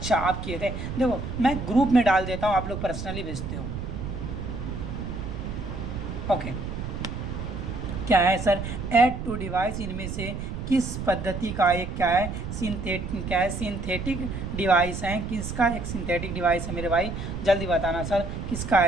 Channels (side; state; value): right; noise; rumble, 6 dB below the sound